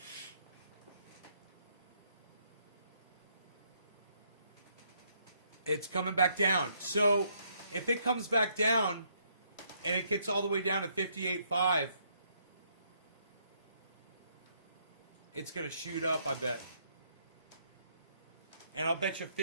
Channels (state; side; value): inverted; both; correlation -0.71